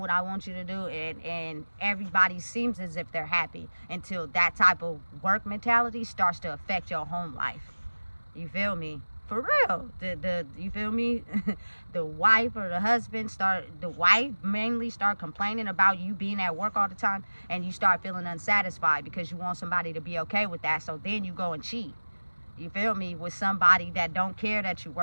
I want you to do, and everybody seems as if they're happy until that type of work mentality starts to affect your home life. You feel me? For real. You feel me? The wife or the wife mainly start complaining about you being at work all the time, and you start feeling unsatisfied because you want somebody to be okay with that. So then you go and cheat. You feel me? With somebody that don't care that you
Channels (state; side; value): inverted; both; correlation -1.00